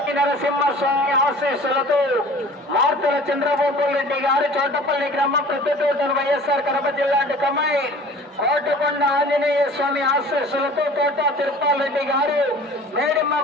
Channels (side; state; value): both; normal; correlation 0.45